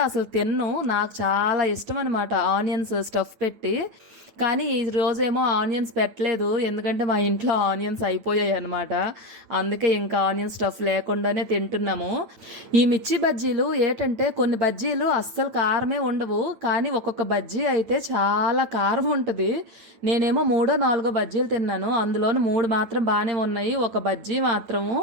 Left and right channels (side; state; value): left; late; 8.9 ms